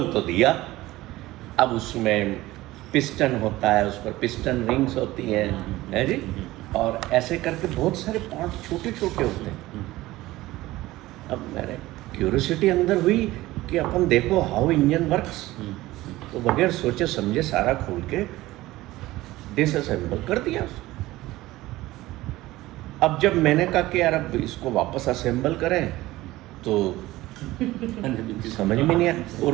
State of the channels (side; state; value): left; quieter; 17.6 dB